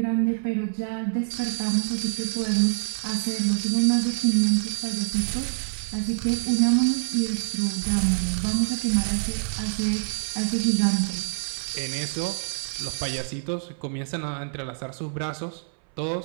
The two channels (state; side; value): silent; left; 61 dB below the other